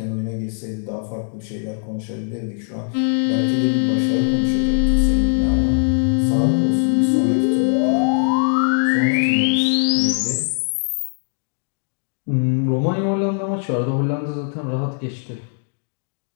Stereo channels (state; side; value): silent; right; digital silence